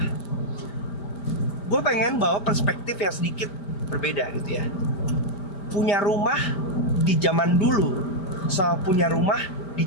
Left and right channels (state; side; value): late; right; 4.5 ms